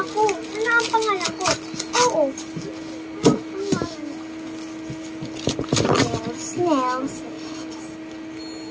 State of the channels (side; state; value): both; identical; correlation 1.00